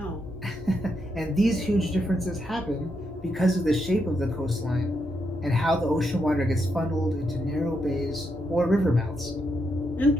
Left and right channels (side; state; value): both; normal; correlation 0.81